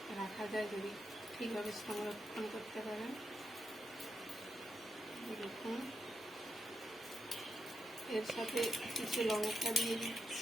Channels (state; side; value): normal; both; correlation 0.84